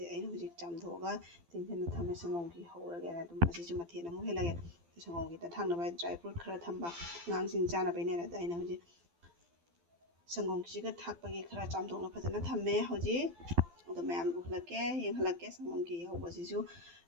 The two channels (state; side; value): late; left; 12 ms